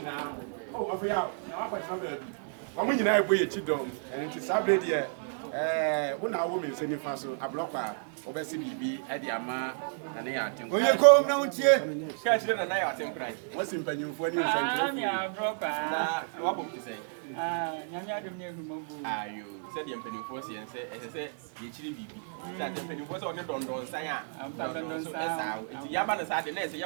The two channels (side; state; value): left; silent; digital silence